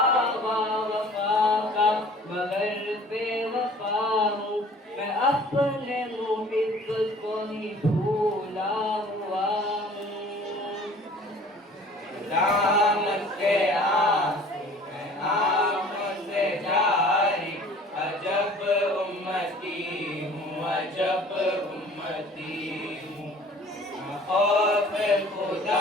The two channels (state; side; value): normal; both; correlation 0.49